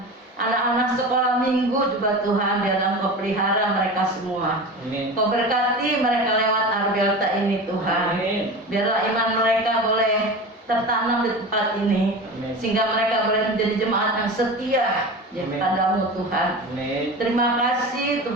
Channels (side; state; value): both; normal; correlation 0.30